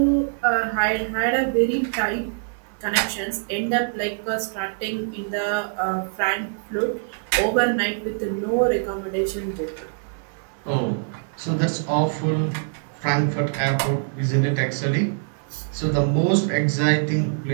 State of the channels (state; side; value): silent; left; digital silence